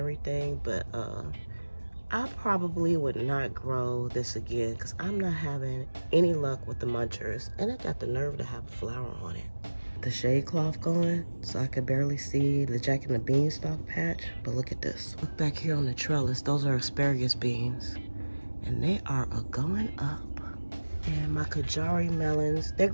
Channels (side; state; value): both; inverted; correlation -1.00